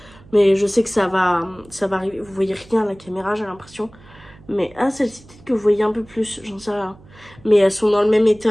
Mais je sais que ça va arriver. Vous voyez rien à la caméra, j'ai l'impression. Mais celle-ci, peut-être que vous voyez un peu plus, j'en sais rien. mais elles sont dans le même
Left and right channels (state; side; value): noise; right; hum, 24 dB below the sound